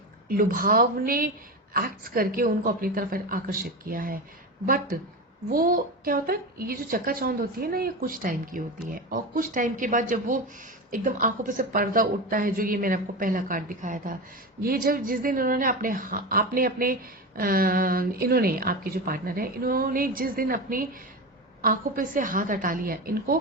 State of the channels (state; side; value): normal; both; correlation 0.22